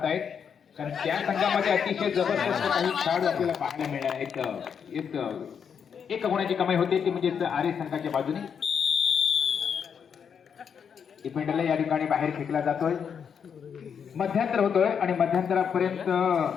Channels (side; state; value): right; quieter; 7.2 dB